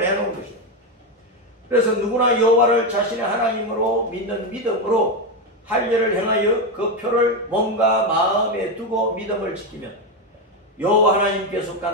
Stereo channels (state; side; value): normal; both; correlation 0.10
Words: 해놓은 것이에요. 그래서 누구나 여호와를 자신의 하나님으로 믿는 믿음으로 할례를 행하여 그 표를 몸과 마음에 두고 믿음을 지키면 여호와 하나님께